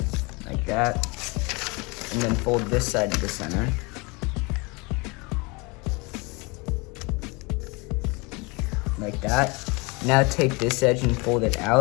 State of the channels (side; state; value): right; quieter; 27.6 dB